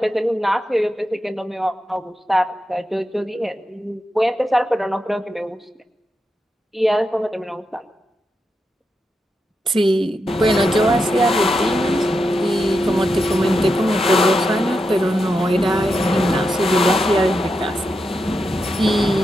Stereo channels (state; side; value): normal; both; correlation 0.86